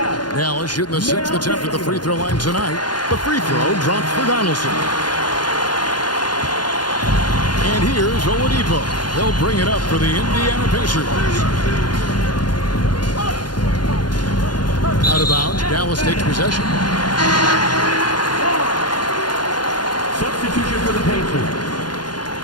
Dallas shooting the 6th attempt at the free throw line tonight. The free throw drops for Donaldson. And here's Oladipo. He'll bring it up for the Indiana Pacers. Out of bounds, Dallas takes possession. Substitution for the Pacers.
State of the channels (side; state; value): right; late; 0.70 ms